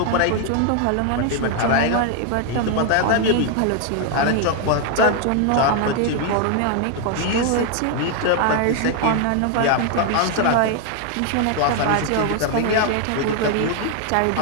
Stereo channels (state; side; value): different; both; correlation 0.00